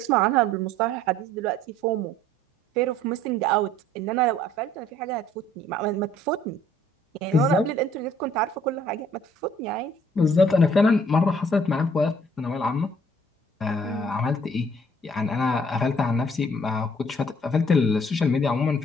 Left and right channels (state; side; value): normal; both; correlation 0.59